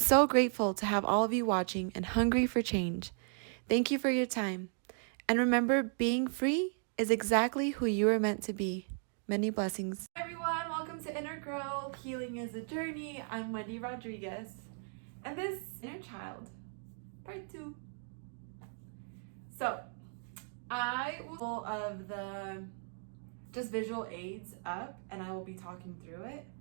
so grateful to have all of you watching and hungry for change. Thank you for your time. And remember, being free is exactly who you are meant to be. Many blessings. Hi everyone, welcome to Inner Growth. Healing is a journey. I'm Wendy Rodriguez. And this is Inner Child, part 2. So, I will pull of the just visual aids up and I will be talking through it.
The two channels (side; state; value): left; silent; 54 dB below the other